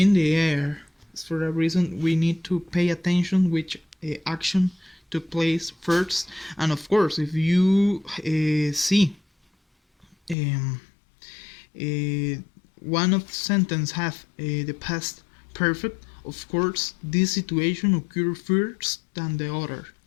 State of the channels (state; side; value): drops out; right; at 10.4 s